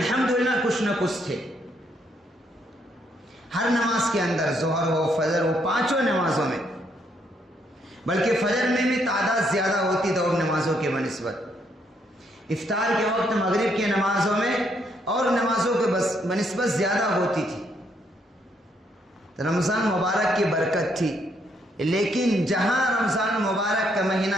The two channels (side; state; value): both; normal; correlation 0.73